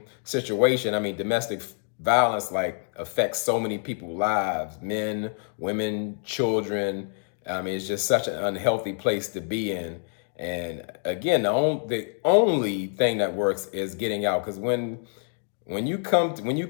situation. I mean, domestic violence, like, affects so many people's lives, men, women, children. I mean, it's just such an unhealthy place to be in. And again, the only thing that works is getting out. Because when you come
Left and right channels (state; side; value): silent; right; 61 dB below the other